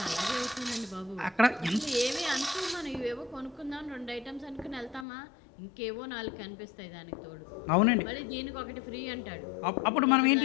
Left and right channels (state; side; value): drops out; right; at 5.1 s